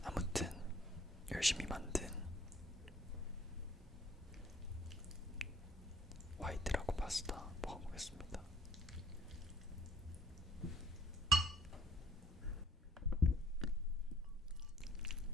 아무튼 열심히 만든 화이트라고 파스타 먹어보겠습니다.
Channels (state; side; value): normal; both; correlation 0.58